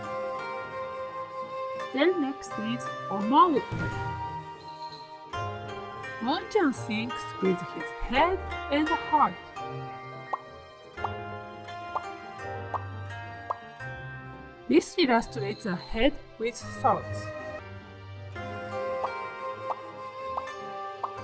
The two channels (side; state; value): both; identical; correlation 1.00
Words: Then next is 思う。Moon-chan thinks with his head and heart. This illustrates a head with thoughts.